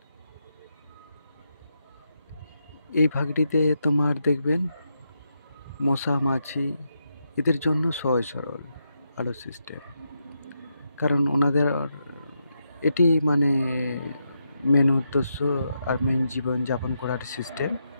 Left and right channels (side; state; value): both; inverted; correlation -0.83